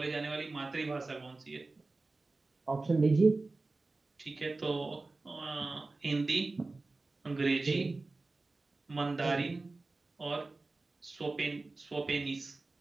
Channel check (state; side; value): quieter; left; 3.4 dB